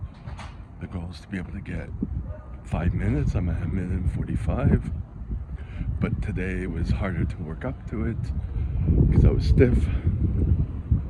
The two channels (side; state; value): both; identical; correlation 1.00